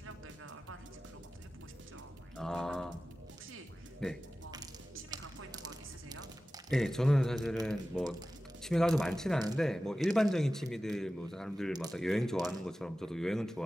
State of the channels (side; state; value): both; normal; correlation 0.95